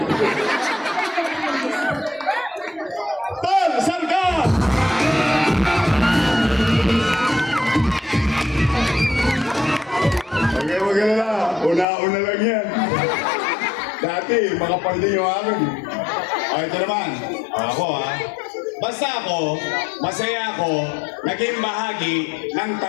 Tol, saan ka? Okay, maganda. Una-una lang yan. Dati, makapandi yung akin. O, ito naman. Ako ha. Basta ako, masaya ako, naging bahagi ng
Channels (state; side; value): drops out; right; at 11.9 s